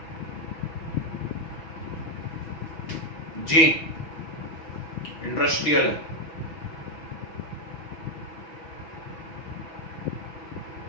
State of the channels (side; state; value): right; late; 6.1 ms